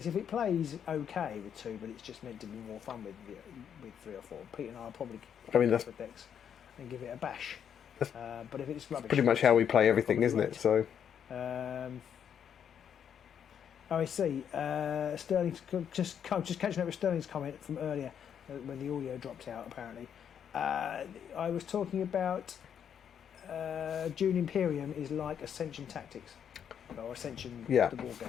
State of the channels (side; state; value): right; quieter; 8.4 dB